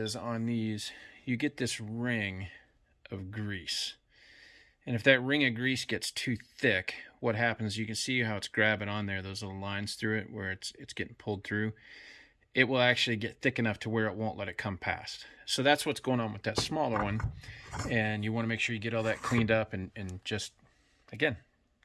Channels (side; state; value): both; identical; correlation 1.00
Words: on these, you get this ring of grease. And if that ring of grease gets too thick, what happens, you can see how it's grabbing on there, those little lines through it where it's getting pulled through. It will actually get thick enough to where it won't let it come past. So that's what's going on with that smaller one. And you want to make sure you get all that cleaned up and just, again,